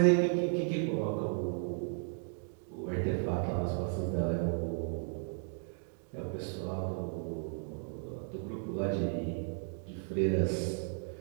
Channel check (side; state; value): left; silent; 55 dB below the other